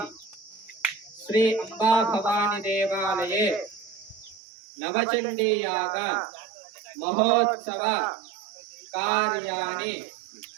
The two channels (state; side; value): drops out; left; at 4.4 s